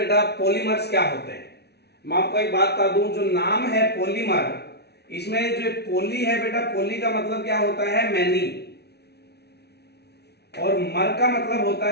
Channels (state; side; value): late; right; 0.49 ms